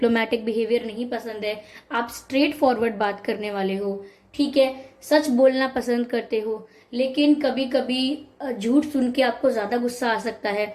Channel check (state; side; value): identical; both; correlation 1.00